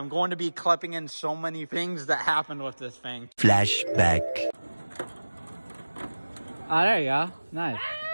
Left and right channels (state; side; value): inverted; both; correlation -1.00